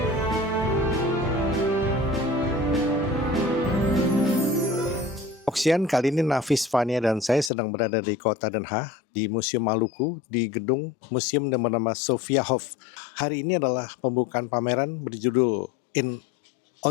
Oksian, kali ini Nafis, Fania, dan saya sedang berada di kota Den Haag, di Museum Maluku, di gedung museum yang bernama Sophia Hof. Hari ini adalah pembukaan pameran berjudul In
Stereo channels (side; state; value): right; drops out; at 7.5 s